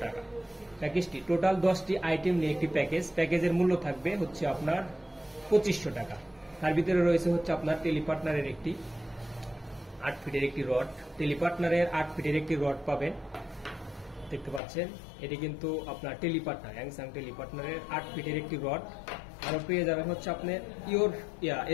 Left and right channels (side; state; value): right; drops out; at 14.6 s